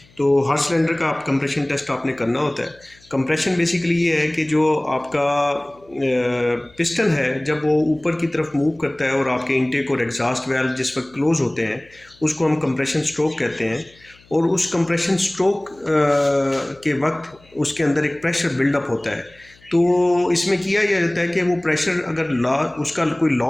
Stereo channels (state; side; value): noise; left; hum, 28 dB below the sound